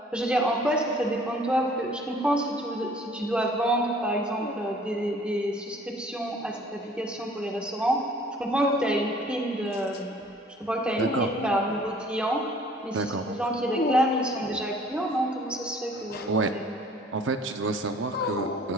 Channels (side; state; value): both; normal; correlation 0.53